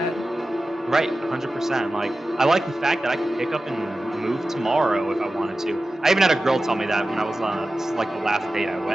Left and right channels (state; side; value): normal; both; correlation 0.95